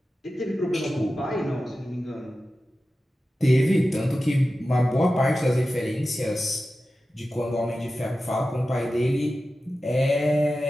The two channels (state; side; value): normal; both; correlation 0.94